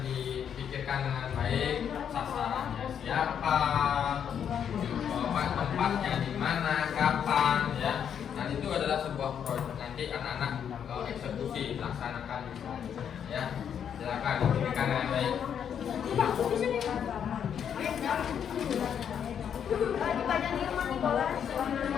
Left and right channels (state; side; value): quieter; right; 8.3 dB